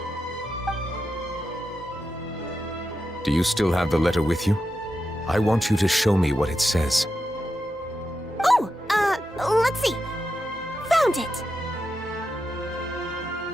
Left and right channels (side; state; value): both; normal; correlation 0.88